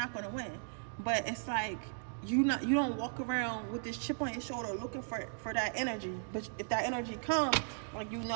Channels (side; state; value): left; silent; digital silence